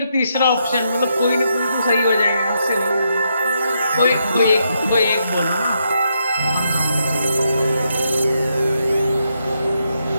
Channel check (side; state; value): both; inverted; correlation -0.80